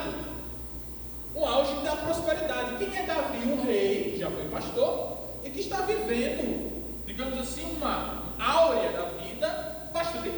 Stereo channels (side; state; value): left; noise; hiss, 19 dB below the sound